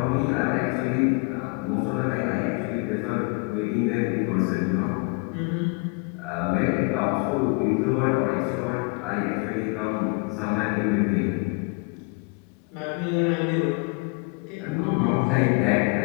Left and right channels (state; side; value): quieter; right; 30.2 dB